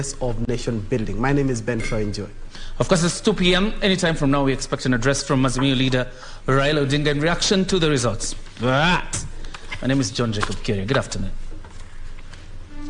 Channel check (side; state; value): both; identical; correlation 1.00